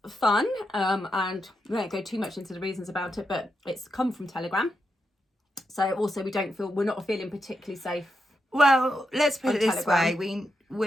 fun. And we won't go too much into the reasons about it, but it's come from Telegram. So also we're not feeling particularly safe. Well, let's put it this Telegram.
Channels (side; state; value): both; normal; correlation 0.85